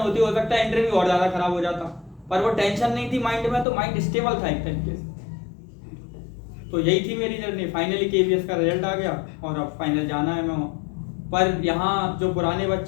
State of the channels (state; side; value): drops out; right; at 3.7 s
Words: हो सकता है इंटरव्यू और ज्यादा खराब हो जाता, पर वो टेंशन नहीं थी माइंड में, तो माइंड स्टेबल था एक तरीके से। तो यही थी मेरी जर्नी। फाइनली KVS का रिजल्ट आ गया और अब फाइनल जाना है मैं वहाँ। पर यहाँ जो पुराने